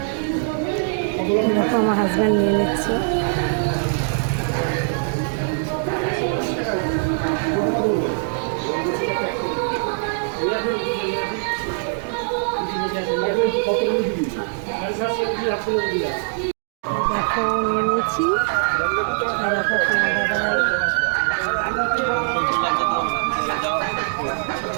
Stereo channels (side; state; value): left; silent; digital silence